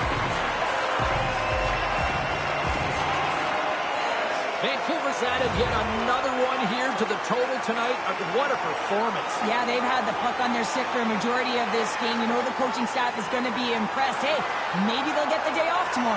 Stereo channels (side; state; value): both; identical; correlation 1.00